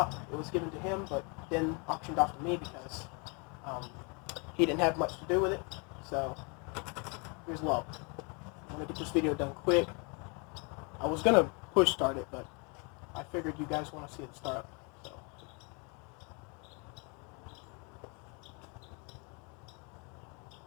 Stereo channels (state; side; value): quieter; right; 32.8 dB